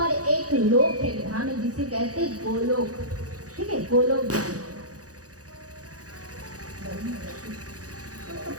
एक लोक है, धाम है जिसे कहते हैं गोलोक, ठीक है, गोलोक धाम।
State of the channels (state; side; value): late; left; 0.67 ms